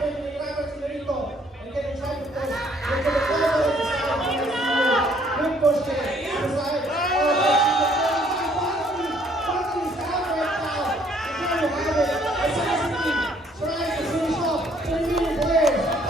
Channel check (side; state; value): both; normal; correlation 0.63